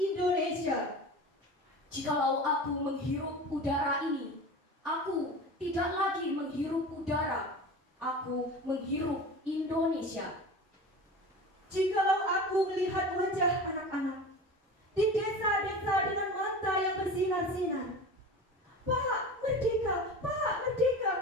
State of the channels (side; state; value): both; normal; correlation 0.33